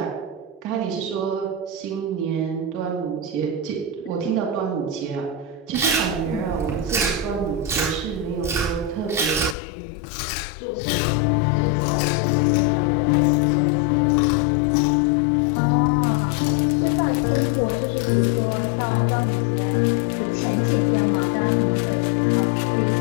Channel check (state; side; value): drops out; right; at 9.6 s